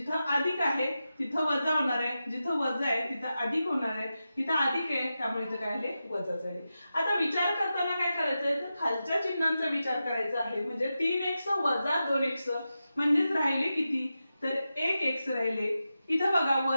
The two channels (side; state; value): both; inverted; correlation -0.91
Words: अधिक आहे तिथं वजा होणार आहे जिथं वजा आहे तिथं अधिक होणार आहे तिथं अधिक आहे त्यामुळे इथं काय आले वजा झाले. आता विचार करताना काय करायचंय तर खालच्या चिन्हांचा विचार करायचा आहे म्हणजे 3x - 2x म्हणजेच राहिले किती तर 1x राहिले. इथं बघा